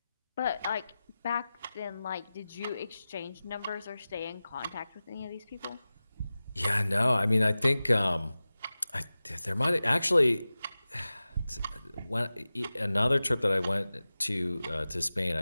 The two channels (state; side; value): inverted; both; correlation -0.96